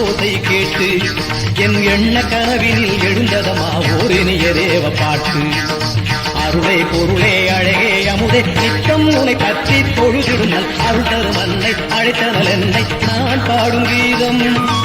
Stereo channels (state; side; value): identical; both; correlation 1.00